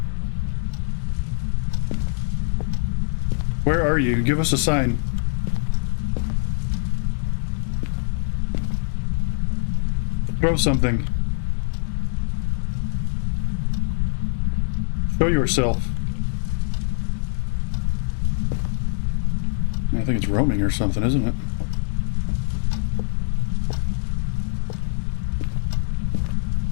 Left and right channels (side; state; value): right; silent; digital silence